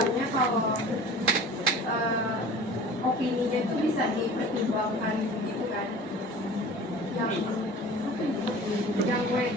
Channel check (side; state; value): both; normal; correlation 0.42